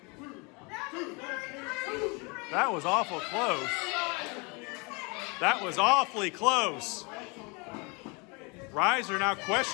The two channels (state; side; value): quieter; right; 30.0 dB